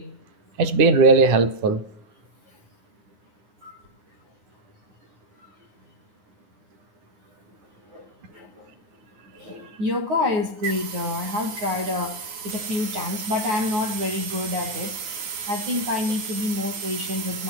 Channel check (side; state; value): left; late; 9.6 ms